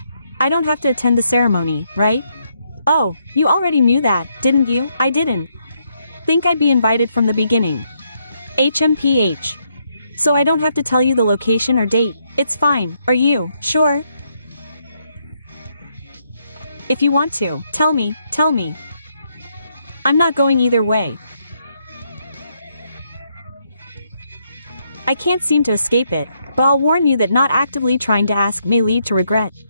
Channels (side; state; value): both; inverted; correlation -0.76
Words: I don't have to attend the ceremony, right? Oh, you already knew that, didn't you? I didn't think I'd be invited from the beginning. HMPH. So I don't have to tell you the location or date. It's fine, are you sure? If you want to, tell me. I'm not going either way. I can't seem to escape it, but I'll warn you that not actively trying to ask may lead to regret.